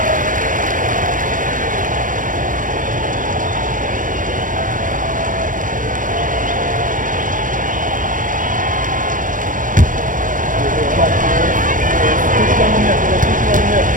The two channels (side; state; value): left; late; 0.38 ms